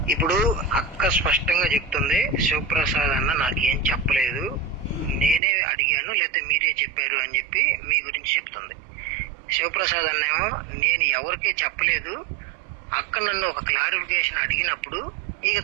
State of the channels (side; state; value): left; drops out; at 5.4 s